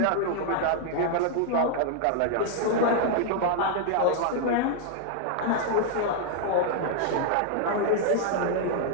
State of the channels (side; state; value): both; different; correlation -0.01